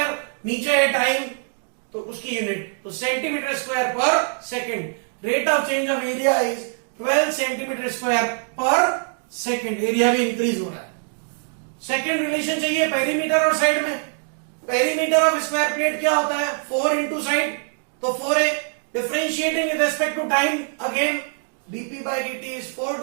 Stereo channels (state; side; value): silent; left; 63 dB below the other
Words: नीचे है टाइम तो उसकी यूनिट, तो centimeter square per second. Rate of change of area is 12 centimeter square per second. Area भी इंक्रीज हो रहा है। सेकेंड रिलेशन चाहिए पेरीमीटर और साइड में। पेरीमीटर ऑफ स्क्वायर प्लेट क्या होता है, 4 इंटू साइड, तो 4a। Differentiating with respect to time, again dp by dt is 4